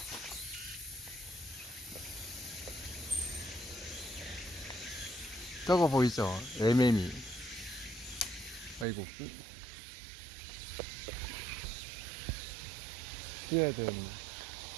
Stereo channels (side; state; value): left; drops out; at 8.8 s